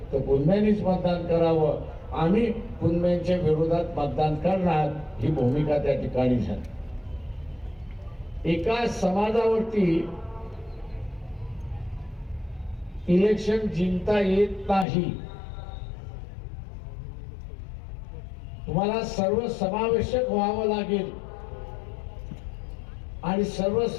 तर कुणब्यांनीच मतदान करावं, आम्ही कुणब्यांच्या विरोधात मतदान करणार, ही भूमिका त्या ठिकाणी झाली. एका समाजावरती इलेक्शन जिंकता येत नाही. तुम्हाला सर्व समावेशक व्हावं लागेल आणि सर्व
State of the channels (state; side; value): drops out; right; at 14.9 s